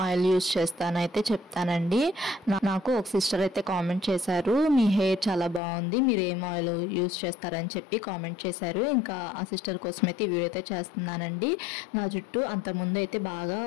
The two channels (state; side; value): drops out; right; at 5.6 s